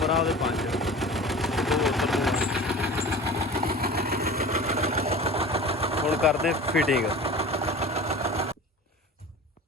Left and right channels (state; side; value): normal; both; correlation 0.37